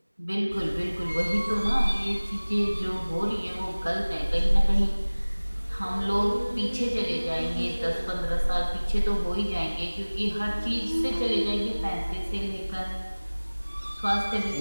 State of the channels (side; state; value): both; inverted; correlation -1.00